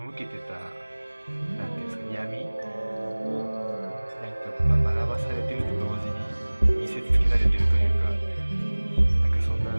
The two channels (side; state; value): both; inverted; correlation -1.00